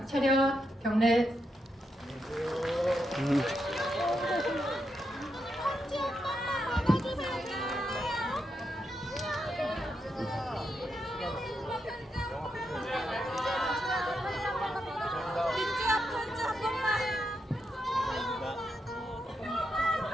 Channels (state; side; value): normal; both; correlation 0.83